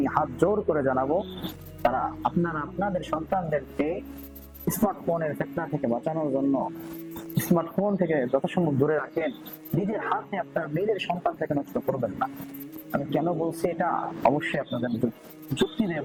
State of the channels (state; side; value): identical; both; correlation 1.00